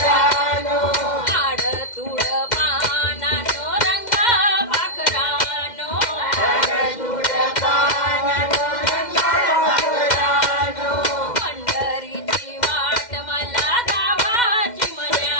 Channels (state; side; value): late; right; 2.1 ms